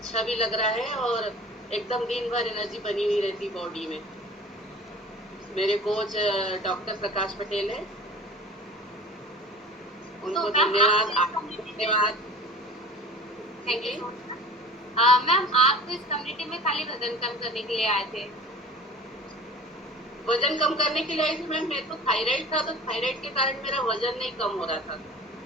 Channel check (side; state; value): both; normal; correlation 0.41